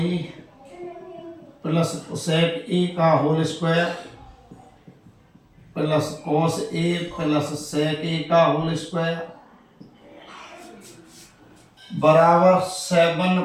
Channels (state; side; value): identical; both; correlation 1.00